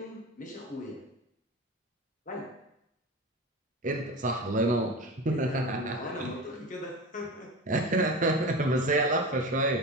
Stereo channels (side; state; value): both; normal; correlation 0.29